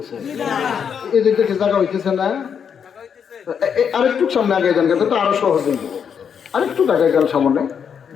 এই দিকে জায়গা হইতেছে না? আরেকটু সামনে আগে যান, কিন্তু আরো সহজ হয়ে যাবে। আরেকটু আগে যান সামনে।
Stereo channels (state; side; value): quieter; right; 7.3 dB